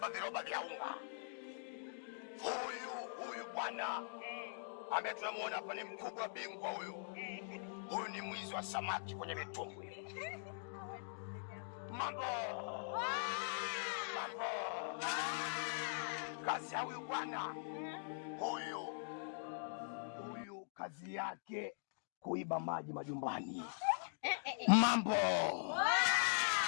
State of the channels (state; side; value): silent; right; digital silence